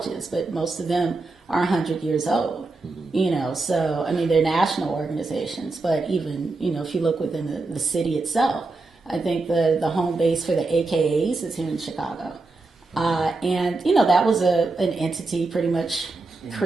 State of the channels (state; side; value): quieter; left; 3.5 dB